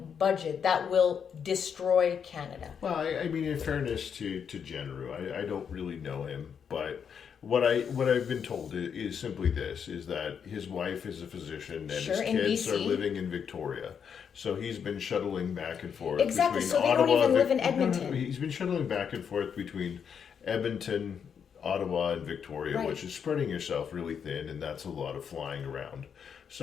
budget that will destroy Canada. Well, I mean, in fairness to Genereux, I don't really know him, but what I've been told is simply this: is that his wife is a physician and his kids are living in Victoria, so he's been shuttling back and forth. Exactly. Between So they Ottawa don't even live in Edmonton. No, he's been shuttling back and forth between Edmonton, Ottawa, and Victoria, Right. which is spreading yourself really thin, and that's a lot of flying around.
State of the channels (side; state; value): right; quieter; 7.3 dB